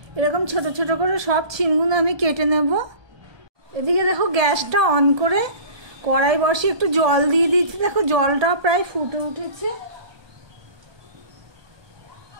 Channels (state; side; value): late; left; 1.2 ms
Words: এরকম ছোট ছোট করে সব ছিমগুলো আমি কেটে নেব। এদিকে দেখো গ্যাসটা অন করে কড়াই বসিয়ে একটু জল দিয়ে দিচ্ছি। দেখো জলটা প্রায় ফুটে উঠেছে।